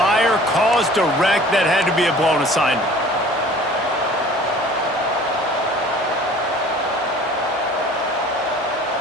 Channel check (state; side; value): normal; both; correlation 0.48